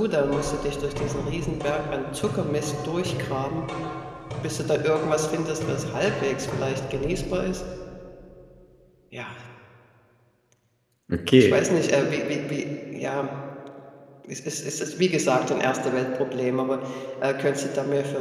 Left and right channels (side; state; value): both; identical; correlation 1.00